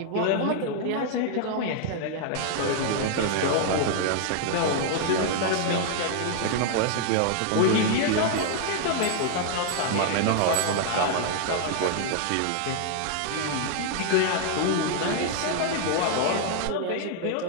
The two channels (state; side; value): different; both; correlation 0.00